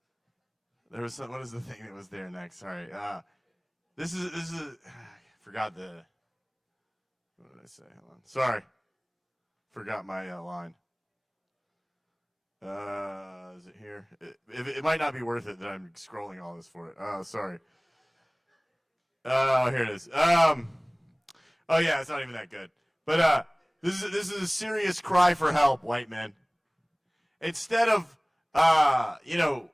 There was some, what is the thing that was there next? Sorry. This is I forgot the, what did I say? Hold on. Sorry. Forgot my line. Is it here? It might not be worth it that I'm scrolling all this for it. Oh, sorry. Oh, here it is. Oh yeah, it's not even that good. But this is a serious cry for help, white men. Instead of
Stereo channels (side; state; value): both; identical; correlation 1.00